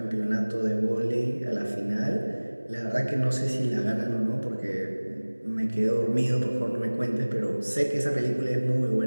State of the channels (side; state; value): both; inverted; correlation -1.00